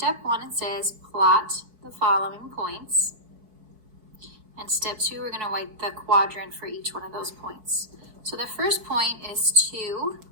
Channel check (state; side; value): late; left; 4.6 ms